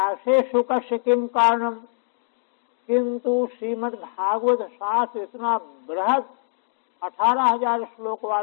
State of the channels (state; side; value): silent; right; digital silence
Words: सुखस्य किम कारणम। किंतु श्रीमद् भागवत शास्त्र इतना बृहद 18,000 श्लोक